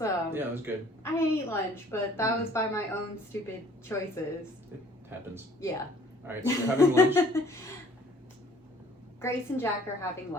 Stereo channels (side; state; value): both; normal; correlation 0.56